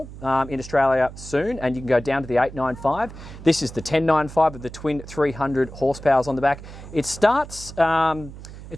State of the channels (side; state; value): right; noise; hum, 14 dB below the sound